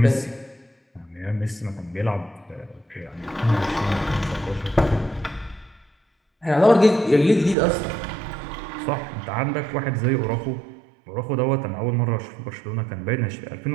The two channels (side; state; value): left; drops out; at 7.6 s